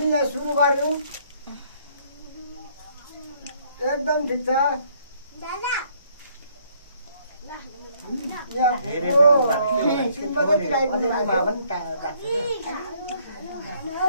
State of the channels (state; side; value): inverted; both; correlation -0.65